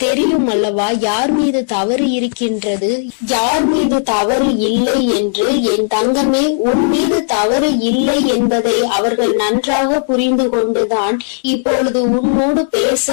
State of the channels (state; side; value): silent; right; digital silence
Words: தெரியும் அல்லவா யார் மீது தவறு இருக்கின்றது, யார் மீது தவறு இல்லை என்று. என் தங்கமே, உன் மீது தவறு இல்லை என்பதை அவர்கள் நன்றாக புரிந்து கொண்டுதான் இப்பொழுது உன்னோடு